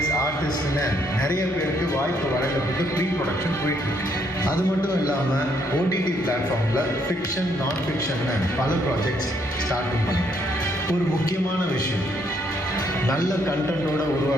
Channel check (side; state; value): both; normal; correlation 0.71